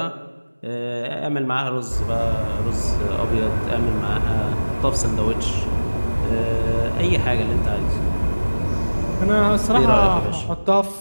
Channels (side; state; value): both; inverted; correlation -1.00